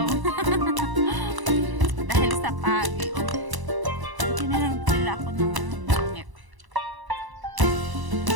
Dahil sa pagi. Hindi na lang pala ako ng langit.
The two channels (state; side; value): late; left; 1.0 ms